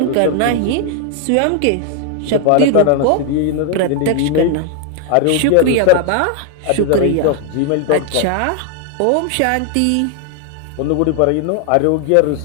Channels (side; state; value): both; different; correlation 0.00